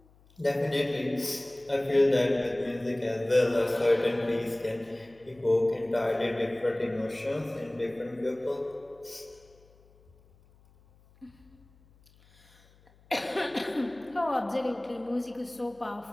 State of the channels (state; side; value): noise; left; hum, 29 dB below the sound